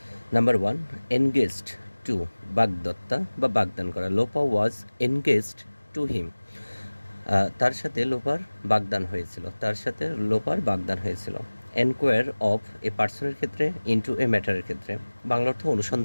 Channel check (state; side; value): inverted; both; correlation -1.00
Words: Number one, engaged to বাগদত্তা বা বাগদান করা. লোপা ওয়াজ engaged to him. তার সাথে লোপার বাগদান হয়েছিল. তার সাথে লোপার বাগদান হয়েছিল. এনকোয়ার অফ এ পার্সনের ক্ষেত্রে, ইনটু এ ম্যাটারের ক্ষেত্রে. বাংলা অর্থ